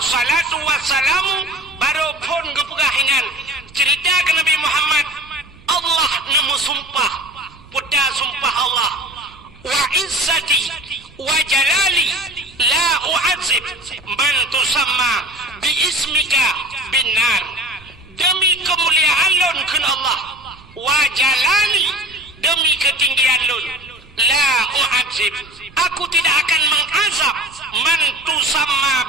salatu wassalamu baru pun gepegahingan cerita ke Nabi Muhammad Allah nemu sumpah puta sumpah Allah wa izzati wa jalali la u'adzib man tusamma bi ismika binar demi kemuliaan lun kun Allah wa jalali demi ketinggian lun la u'adzib aku tidak akan mengazab man tusamma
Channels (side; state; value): right; noise; rumble, 24 dB below the sound